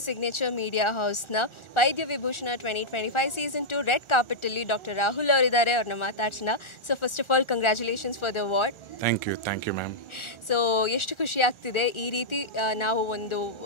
ಸಿಗ್ನೇಚರ್ ಮೀಡಿಯಾ ಹೌಸ್ನ ವೈದ್ಯ ವಿಭೂಷಣ 2025 ಸೀಸನ್ 2 ರೆಡ್ ಕಾರ್ಪೆಟಲ್ಲಿ ಡಾಕ್ಟರ್ ರಾಹುಲ್ ಅವರಿದ್ದಾರೆ. ಅವ್ರನ್ನ ಮಾತಾಡ್ಸೋಣ. So first of all congratulations for the award. Thank you ma'am. So ಎಷ್ಟು ಖುಷಿ ಆಗ್ತಿದೆ ಈ ರೀತಿ ನಾವು ಒಂದು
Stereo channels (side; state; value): right; late; 1.4 ms